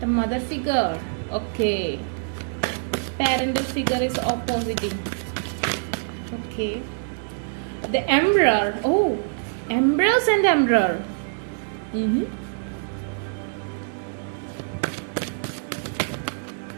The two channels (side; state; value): left; silent; digital silence